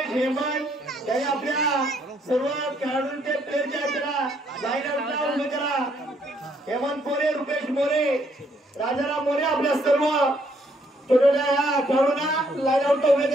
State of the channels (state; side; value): normal; both; correlation 0.70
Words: हेमंत यांनी आपल्या सर्व खेळाडूंचे प्लेयरच्या त्याला लाईन आउटला उभे करा। हेमंत मोरे, रुपेश मोरे, राजाराम मोरे आपल्या सर्व छोट्या या खेळाडूंना लाईन आउटला उभे